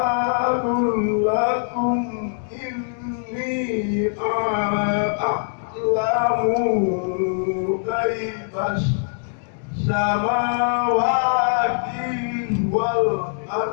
lakum inni a'lamu ghaibas samawati wal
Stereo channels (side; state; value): right; silent; digital silence